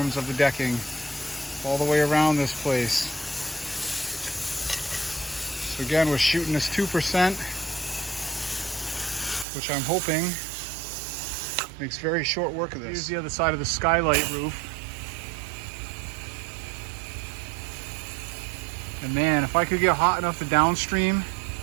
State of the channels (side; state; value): left; drops out; at 9.5 s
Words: of the decking all the way around this place. So again, we're shooting this 2%. Which I'm hoping makes very short work of this. Here's the other side of the skylight roof. And man, if I could get hot enough to downstream